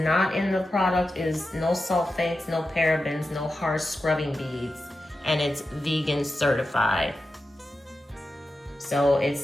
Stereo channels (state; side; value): normal; both; correlation 0.91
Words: in the product is no sulfates, no parabens, no harsh scrubbing beads, and it's vegan certified. So it